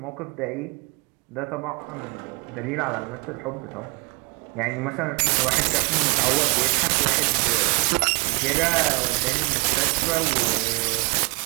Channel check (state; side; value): quieter; left; 30.4 dB